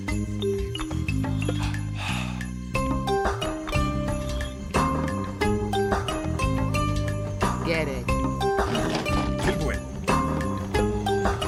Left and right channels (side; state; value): both; identical; correlation 1.00